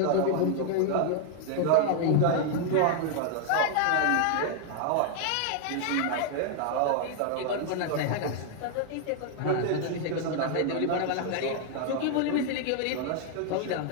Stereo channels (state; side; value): different; both; correlation 0.00